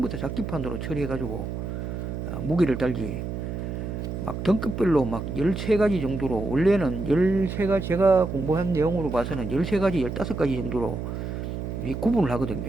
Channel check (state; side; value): noise; right; hum, 5 dB below the sound